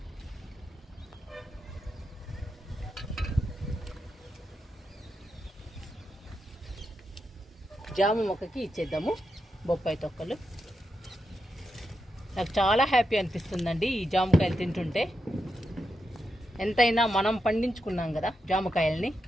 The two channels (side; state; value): both; normal; correlation 0.86